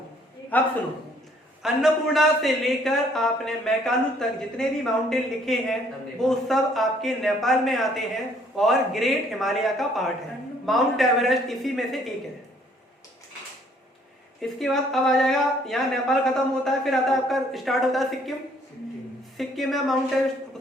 अब सुनो, अन्नपूर्णा से लेकर आपने मैकालू तक जितने भी माउंटेन लिखे हैं वो सब आपके नेपाल में आते हैं और ग्रेट हिमालय का पार्ट है। माउंट एवरेस्ट इसी में से एक है। इसके बाद अब आ जाएगा, यहाँ नेपाल खत्म होता है, फिर आता है आपका स्टार्ट होता है सिक्किम। सिक्किम में माउंट एवरेस्ट,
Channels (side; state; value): both; normal; correlation 0.62